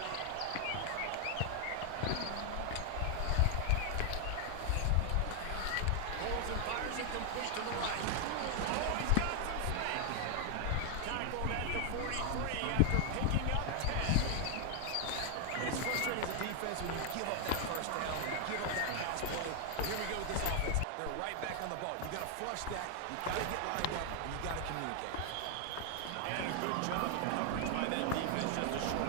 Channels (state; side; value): different; both; correlation 0.00